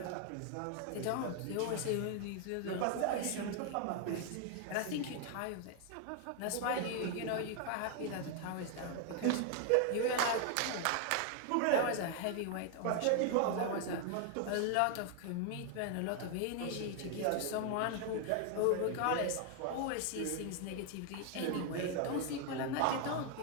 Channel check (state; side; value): different; both; correlation 0.00